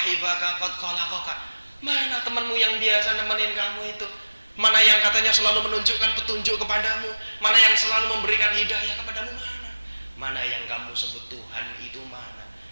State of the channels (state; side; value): inverted; both; correlation -1.00